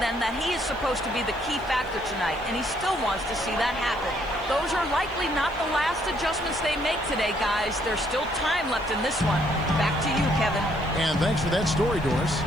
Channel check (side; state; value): left; noise; hiss, 29 dB below the sound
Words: that he is supposed to be the key factor tonight, and he still wants to see that happen. Those are likely not the last adjustments they make today, guys. There's still time left in this one. Back to you, Kevin. And thanks for that story, Doris.